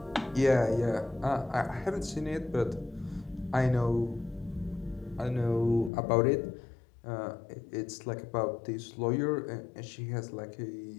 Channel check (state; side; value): drops out; right; at 5.9 s